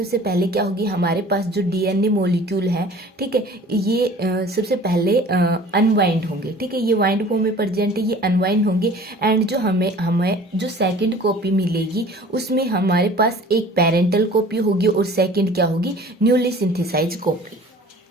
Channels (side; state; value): both; normal; correlation 0.47